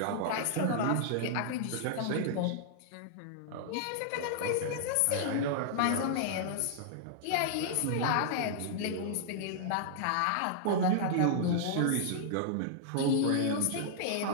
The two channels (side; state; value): both; different; correlation -0.01